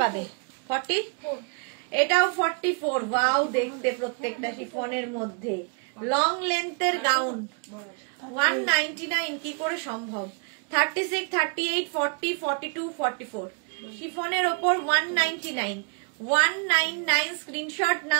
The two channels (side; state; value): left; quieter; 36.8 dB